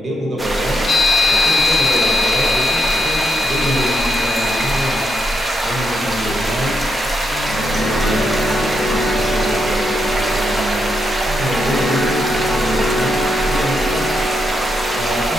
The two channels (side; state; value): both; normal; correlation 0.81